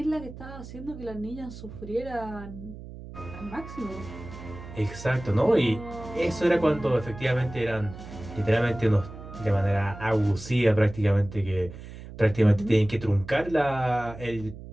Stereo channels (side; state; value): right; noise; hum, 14 dB below the sound